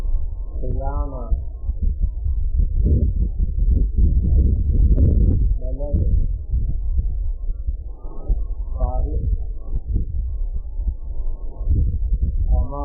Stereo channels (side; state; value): both; identical; correlation 1.00